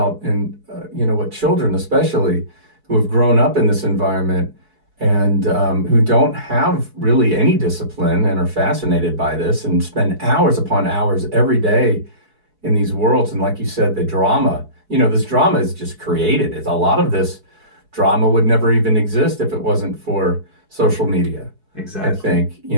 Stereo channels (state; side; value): late; left; 4.7 ms